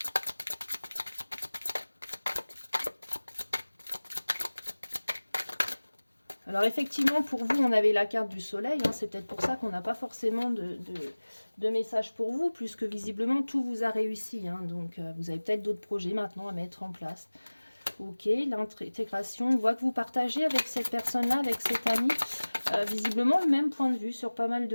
Alors effectivement, pour vous, on avait la carte du soleil. Hein, c'est peut-être pour ça qu'on n'a pas forcément de message pour vous, puisque visiblement, tout vous a réussi. Hein, donc, vous avez peut-être d'autres projets maintenant à mettre en place. Ok, l'intégration. On voit que vous partagez avec cette personne-là, avec cet ami, visiblement le même point de vue sur pas mal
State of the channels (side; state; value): both; inverted; correlation -1.00